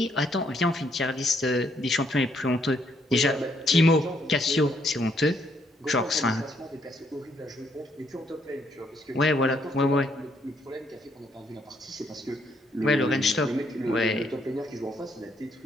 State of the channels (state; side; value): normal; both; correlation 0.71